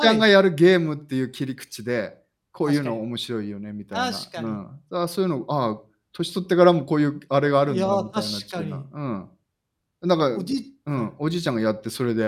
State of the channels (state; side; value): identical; both; correlation 1.00